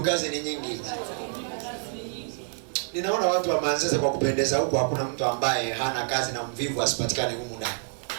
kazi ni nyingi. Ninaona watu wa Manzese kwa kupendeza huko, hakuna mtu ambaye hana kazi na mvivu asipatikane humu ndani.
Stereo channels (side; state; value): left; silent; 60 dB below the other